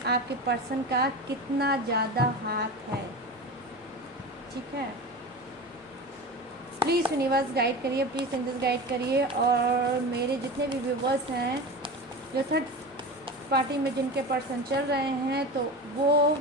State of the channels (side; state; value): both; normal; correlation 0.28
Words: पर्सन का कितना ज़्यादा हाथ है। ठीक है, प्लीज़ यूनिवर्स गाइड करिए, प्लीज़ एंजल्स गाइड करिए। और मेरे जितने भी व्यूवर्स हैं जो थर्ड पार्टी में जिनके पर्सन चल रहे हैं, तो वो